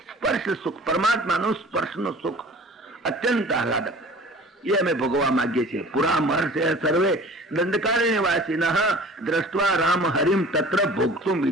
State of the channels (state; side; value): normal; both; correlation 0.45